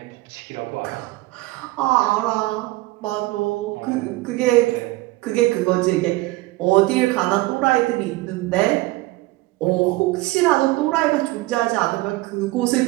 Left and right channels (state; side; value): quieter; left; 20.0 dB